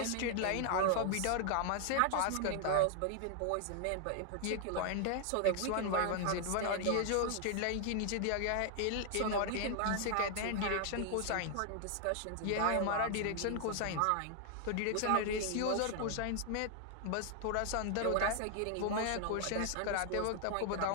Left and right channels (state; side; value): different; both; correlation 0.00